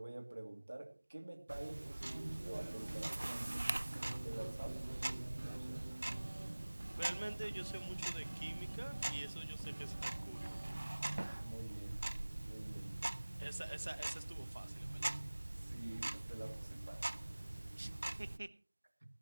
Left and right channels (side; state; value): both; inverted; correlation -1.00